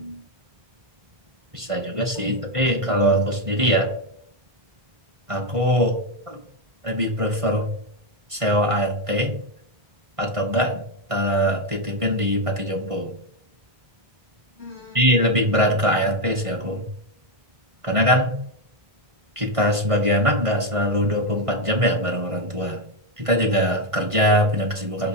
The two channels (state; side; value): late; left; 1.5 ms